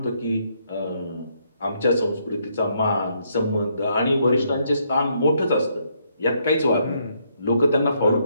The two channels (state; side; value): inverted; both; correlation -0.73